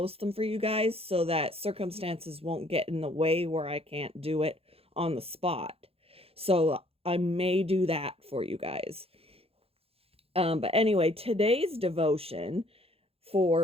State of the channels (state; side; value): late; left; 0.28 ms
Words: them for you guys so that circumstances won't get in the way where I can't do it on the spot. So I may do that for you guys. But anyway, today's devotion